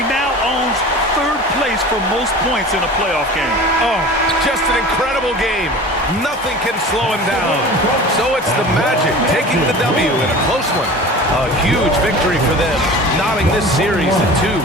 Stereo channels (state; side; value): normal; both; correlation 0.38